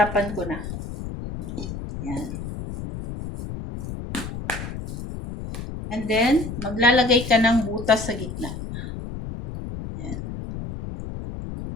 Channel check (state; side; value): noise; left; rumble, 8 dB below the sound